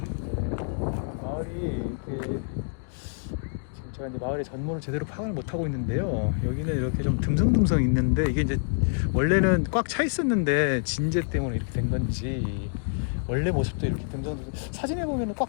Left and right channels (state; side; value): silent; right; digital silence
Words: 마을이 이렇게 지금 제가 이제 마을의 전모를 제대로 파악을 못 하고 있는데요. 여기는 이렇게 좀 듬성듬성 있는데 이게 이제 원래는 꽉 차 있었는데 진재 때문에 이렇게 된 건지 원래 모습도 이렇게 듬성듬성. 사진에 보면은